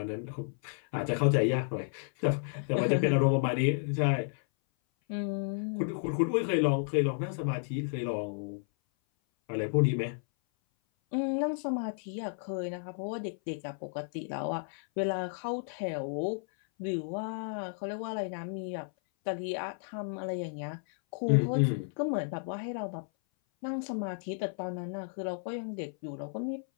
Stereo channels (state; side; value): silent; right; 56 dB below the other